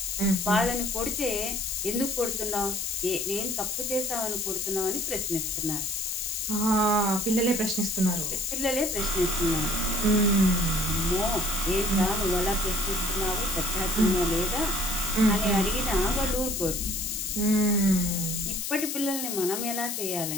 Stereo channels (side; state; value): left; noise; hiss, 3 dB below the sound